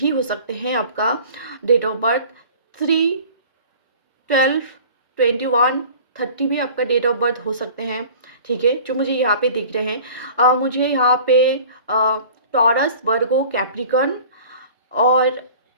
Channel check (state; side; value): inverted; both; correlation -0.45